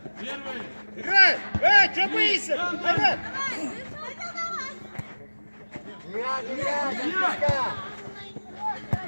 Первый. Играй! Что боишься? Hayrat!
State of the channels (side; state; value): both; inverted; correlation -1.00